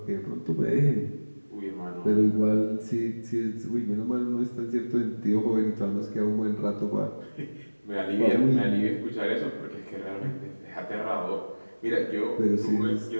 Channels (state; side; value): inverted; both; correlation -1.00